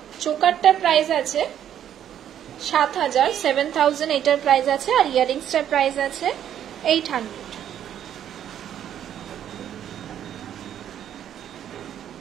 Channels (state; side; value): quieter; left; 10.2 dB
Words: চোকারটার প্রাইস আছে 7000, 7000 এটার প্রাইস আছে, আর ইয়ারিংসটার প্রাইস আছে 800।